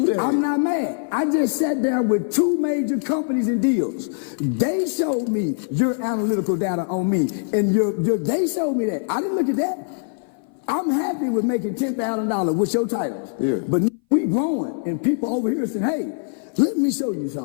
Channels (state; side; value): silent; right; 59 dB below the other